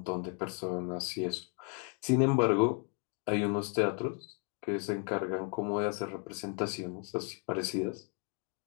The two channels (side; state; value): right; quieter; 37.6 dB